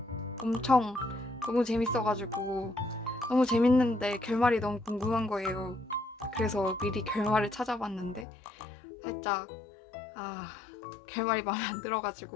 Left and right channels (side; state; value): right; drops out; at 8.2 s